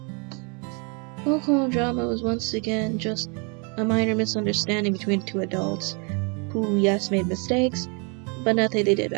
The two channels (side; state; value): left; quieter; 34.8 dB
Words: Local drama was once again just a minor misunderstanding between two adults who, yes, made mistakes, but nothing they did